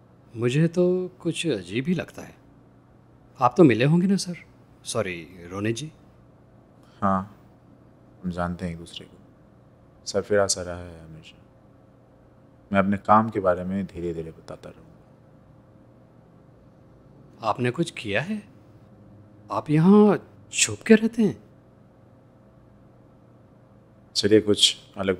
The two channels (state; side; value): identical; both; correlation 1.00